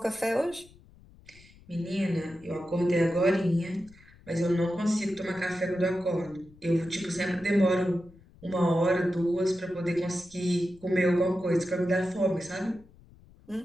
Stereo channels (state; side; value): noise; left; rumble, 25 dB below the sound